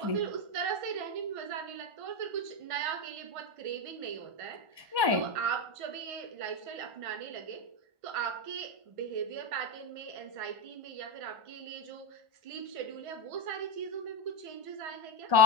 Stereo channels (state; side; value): late; left; 1.1 ms